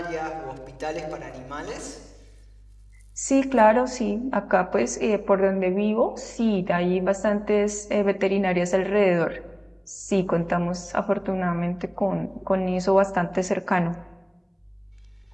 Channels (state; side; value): identical; both; correlation 1.00